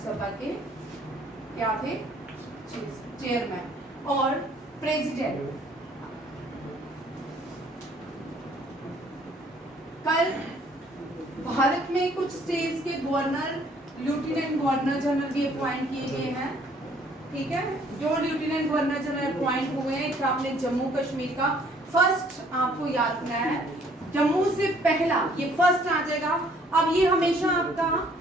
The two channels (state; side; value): normal; both; correlation 0.60